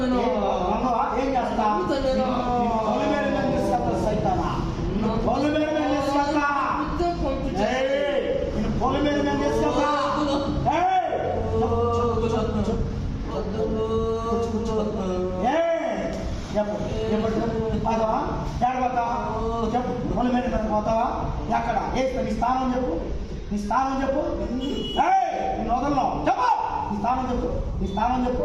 ఏం చేస్తా? సైతానా పొలం మీద తీసుకెళ్తా. పొలం మీద తీసుకెళ్తా. పోతావా? చెప్పు. పొలం మీద పోతావా? ఎక్కడ? నీ స్థానం చెప్పు. నీ స్థానం చెప్పు. నేను వదలను. చెప్పు. నీ స్థానం చెప్పు. నీ స్థానం చెప్పు.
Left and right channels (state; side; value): identical; both; correlation 1.00